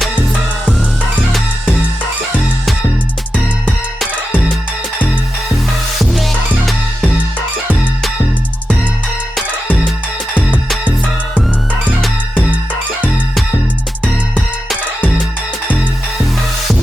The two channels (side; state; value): both; normal; correlation 0.90